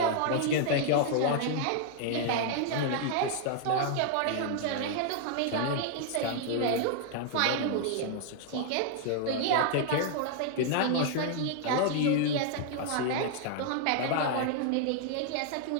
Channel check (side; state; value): both; different; correlation 0.00